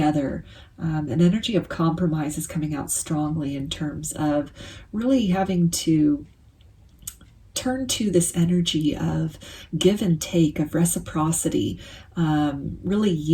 An energy of compromise is coming out strongly in terms of really having to turn to this energy of give and take, of reciprocity, really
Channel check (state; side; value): identical; both; correlation 1.00